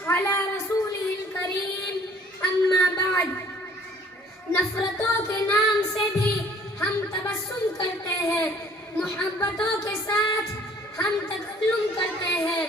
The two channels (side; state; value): both; normal; correlation 0.56